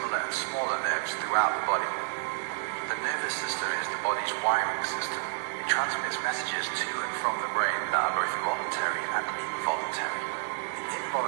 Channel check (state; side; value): quieter; left; 36.6 dB